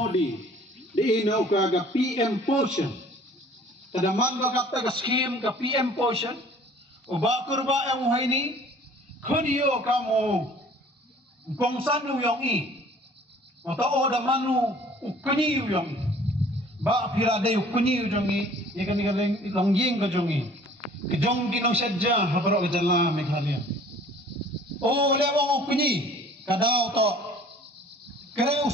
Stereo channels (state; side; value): normal; both; correlation 0.52